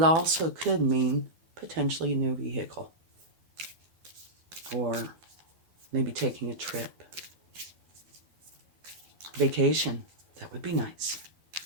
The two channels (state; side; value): late; left; 12 ms